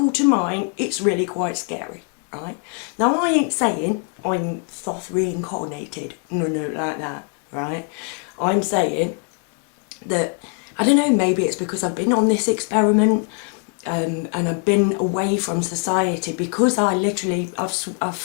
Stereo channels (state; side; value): quieter; right; 38.7 dB